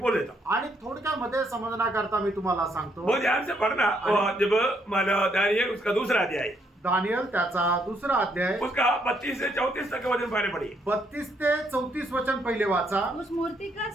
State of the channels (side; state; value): both; normal; correlation 0.72